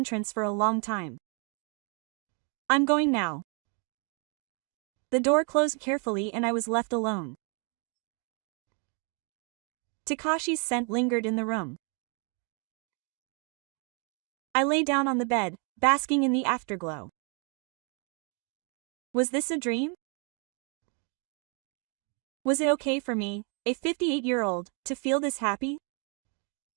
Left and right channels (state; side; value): quieter; left; 37.9 dB